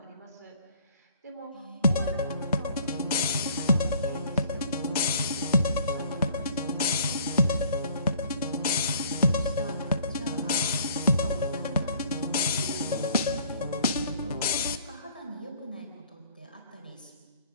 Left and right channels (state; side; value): inverted; both; correlation -0.56